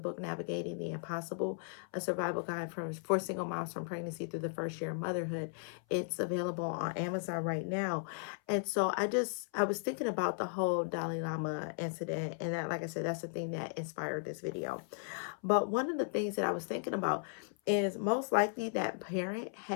Navigating the Impossible, a survival guide for single moms from pregnancy through the first year of motherhood. It's available on Amazon right now. And so I was thinking about the whole Dalai Lama incident, and that, like I said, that's the thing that inspired this video. But one of the things that I was thinking about is most likely that parent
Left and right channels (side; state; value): right; silent; 54 dB below the other